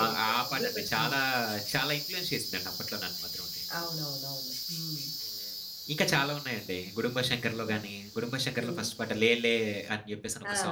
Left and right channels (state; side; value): identical; both; correlation 1.00